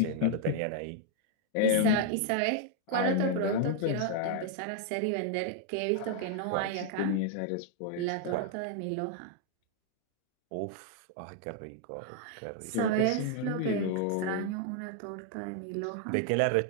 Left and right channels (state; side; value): different; both; correlation 0.00